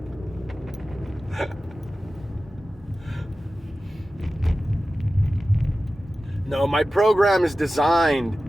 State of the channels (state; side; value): normal; both; correlation 0.95